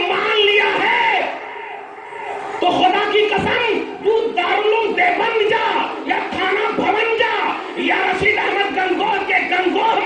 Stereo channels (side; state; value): both; identical; correlation 1.00